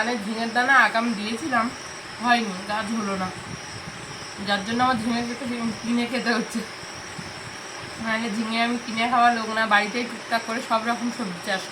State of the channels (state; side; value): identical; both; correlation 1.00